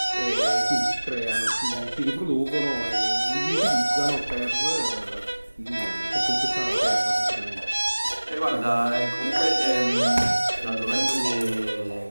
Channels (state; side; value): inverted; both; correlation -1.00